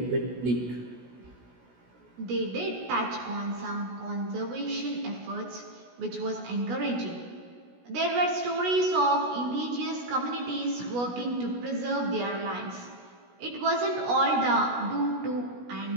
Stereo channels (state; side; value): late; left; 16 ms